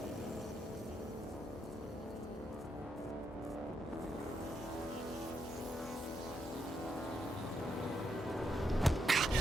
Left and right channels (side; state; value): both; normal; correlation 0.80